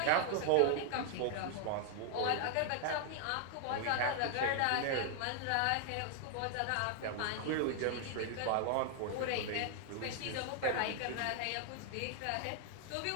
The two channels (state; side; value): different; both; correlation 0.00